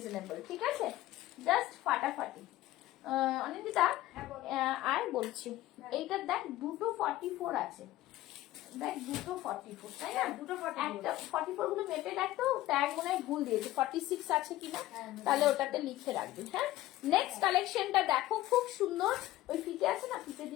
ঠিক আছে, জাস্ট ফাটাফাটি। অনিন্দিতা, আর বলছি, এইটার দেখ দুটো 44 আছে, দেখ দুটো 44, তাই না? দুটো 44 গুলো মেপে দেখতো, ট্যাগ মনে হয় ভুল দিয়েছে, 46 আছে কিনা, তাহলে ওটাতে লিখে রাখবি। হ্যাঁ, নেক্সট কালেকশনটা দেখো, খুব সুন্দর। ওই ফিতে আছে না, ফিতে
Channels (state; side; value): quieter; right; 15.8 dB